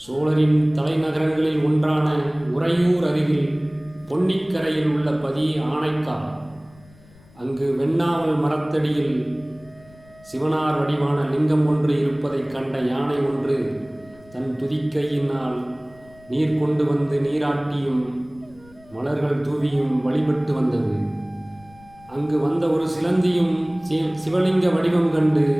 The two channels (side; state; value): left; noise; rumble, 26 dB below the sound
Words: சோழரின் தலைநகரங்களில் ஒன்றான உறையூர் அருகில் பொன்னிக்கரையில் உள்ள பதி ஆனைக்கா. அங்கு வெண்ணாவல் மரத்தடியில் சிவனார் வடிவான லிங்கம் ஒன்று இருப்பதைக் கண்ட யானை ஒன்று தன் துதிக்கையினால் நீர் கொண்டு வந்து நீராட்டியும் மலர்கள் தூவியும் வழிபட்டு வந்தது. அங்கு வந்த ஒரு சிலந்தியும் சிவலிங்க வடிவம் கண்டு